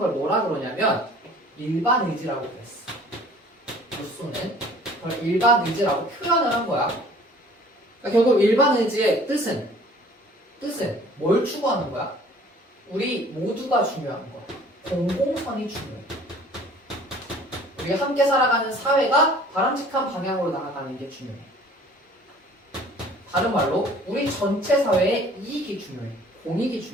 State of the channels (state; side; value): normal; both; correlation 0.51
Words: 뭐라 그러냐면 일반 의지라고 그랬어. 루소는 그걸 일반 의지라고 표현을 한 거야. 그러니까 결국 일반 의지의 뜻은 뭘 추구하는 거야? 우리 모두가 중요한 거야. 공공선이 중요해. 우리가 함께 살아가는 사회가 바람직한 방향으로 나아가는 게 중요해. 다른 말로 우리 전체 사회의 이익이 중요해. 공익이